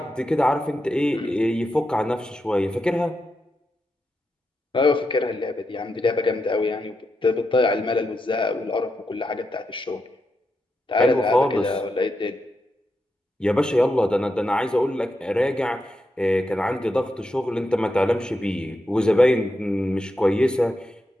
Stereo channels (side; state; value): both; normal; correlation 0.86